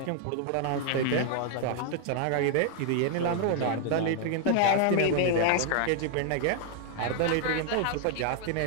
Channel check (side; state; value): both; different; correlation 0.00